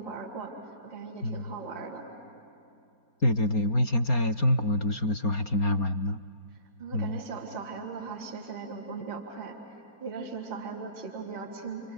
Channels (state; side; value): late; right; 4.3 ms